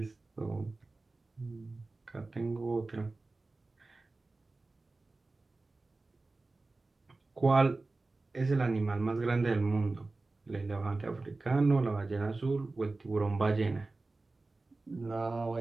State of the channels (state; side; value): quieter; left; 3.4 dB